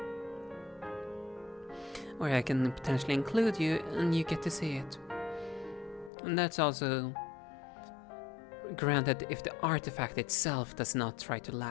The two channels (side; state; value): right; drops out; at 6.1 s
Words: Or I can potentially include you and you get to see it. And that's also granted if the artifact itself does not try to